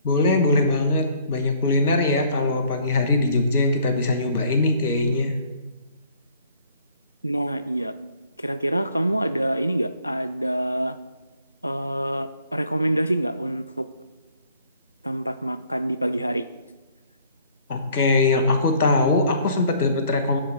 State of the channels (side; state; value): both; inverted; correlation -0.60